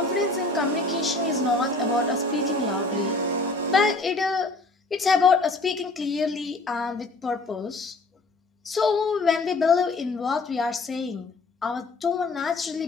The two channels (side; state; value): right; quieter; 3.2 dB